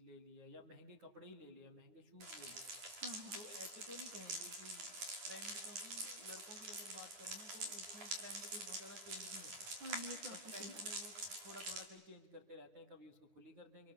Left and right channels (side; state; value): left; late; 10 ms